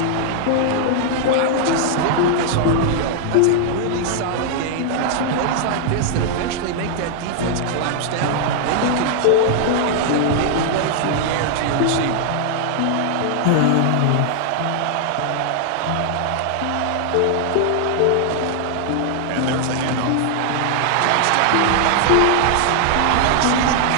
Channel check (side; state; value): both; different; correlation 0.00